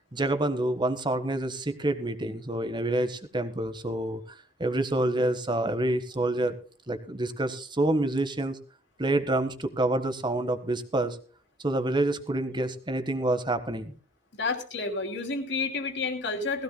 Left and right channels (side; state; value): both; normal; correlation 0.63